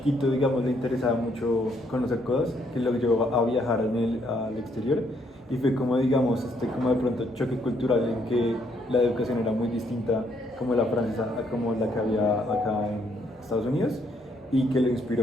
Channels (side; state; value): both; normal; correlation 0.71